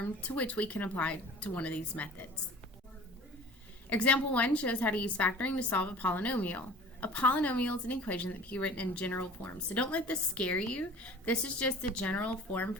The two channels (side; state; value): both; normal; correlation 0.44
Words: to which we can apply to one of these methods. Example 1 shows how to use factoring to solve a polynomial. A polynomial is an equation that can be written in general form. So don't let this scare you. This is just the general form